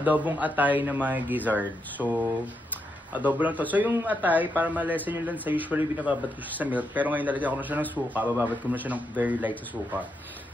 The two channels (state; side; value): normal; both; correlation 0.82